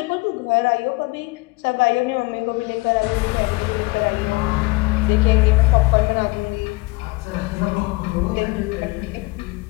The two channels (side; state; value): right; quieter; 24.5 dB